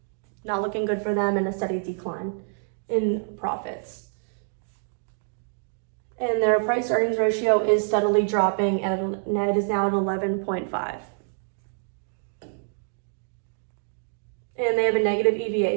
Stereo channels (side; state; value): left; silent; digital silence